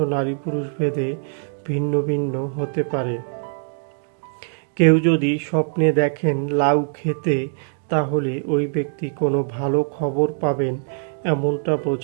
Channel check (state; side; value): silent; left; digital silence